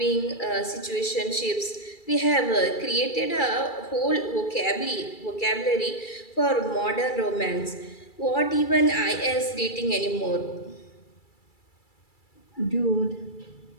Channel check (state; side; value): late; right; 2.3 ms